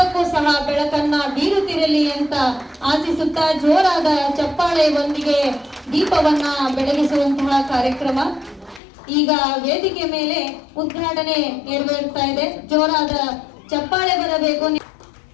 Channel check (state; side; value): drops out; right; at 8.8 s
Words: ಸಹ ಬೆಳಕನ್ನ ಬೀರುತ್ತಿರಲಿ ಅಂತ ಆಶಿಸುತ್ತಾ ಜೋರಾದ ಚಪ್ಪಾಳೆಯೊಂದಿಗೆ ದೀಪವನ್ನ ಬೆಳಗಿಸುವಂತಹ ಕಾರ್ಯಕ್ರಮ ಈಗ ವೇದಿಕೆ ಮೇಲೆ ಉದ್ಘಾಟನೆ ನೆರವೇರ್ತಾ ಇದೆ. ಜೋರಾದ ಚಪ್ಪಾಳೆ ಬರಬೇಕು.